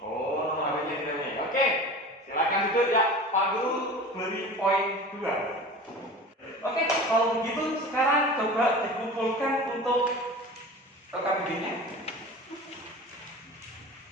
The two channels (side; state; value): both; normal; correlation 0.36